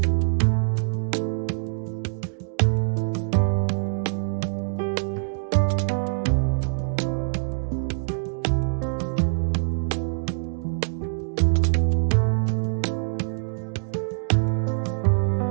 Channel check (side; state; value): left; silent; digital silence